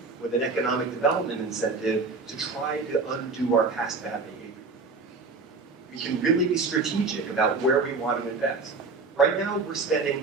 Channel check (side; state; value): left; quieter; 4.1 dB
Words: with an economic development incentive to try to undo our past bad behavior. We can really be strategic about where we want to invest. Right now, we're